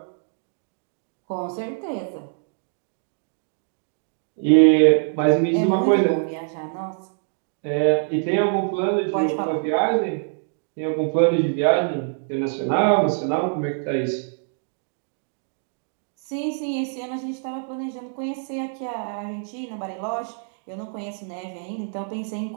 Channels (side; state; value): left; silent; digital silence